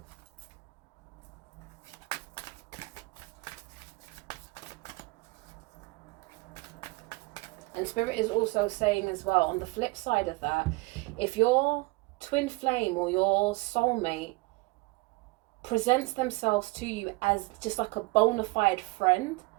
And Spirit is also saying as well, on the flip side of that, if your twin flame or your soulmate presents themselves to you as just like a bona fide friend,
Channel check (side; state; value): left; quieter; 23.5 dB